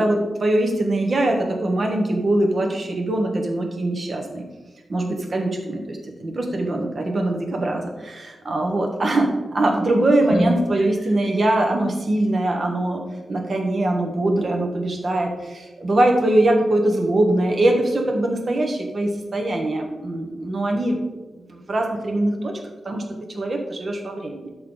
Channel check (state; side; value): normal; both; correlation 0.91